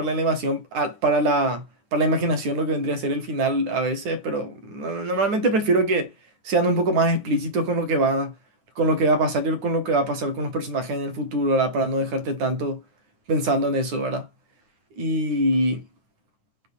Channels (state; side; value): late; left; 9.3 ms